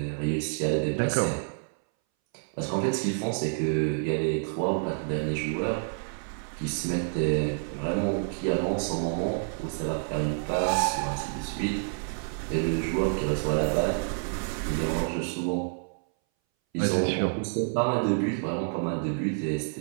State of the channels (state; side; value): silent; left; 59 dB below the other